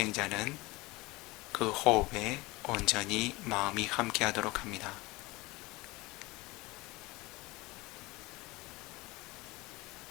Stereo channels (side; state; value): right; quieter; 22.3 dB